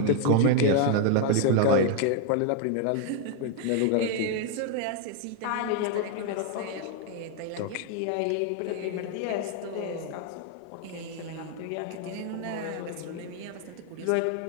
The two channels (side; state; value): both; different; correlation 0.00